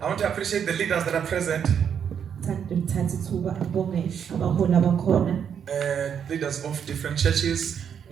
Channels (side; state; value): left; quieter; 8.0 dB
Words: I want to appreciate the leaders that are present. Leaders of different churches